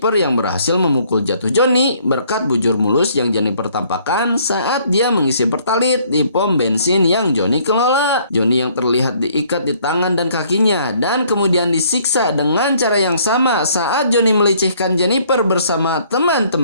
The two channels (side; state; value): both; inverted; correlation -0.62